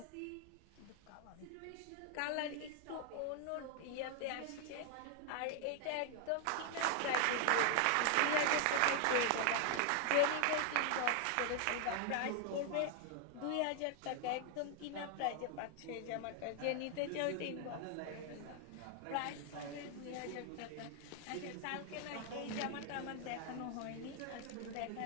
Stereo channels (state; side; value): different; both; correlation 0.00